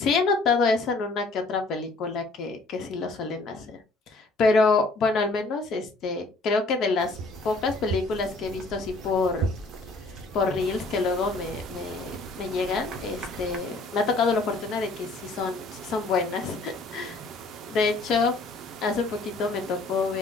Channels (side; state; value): right; quieter; 3.2 dB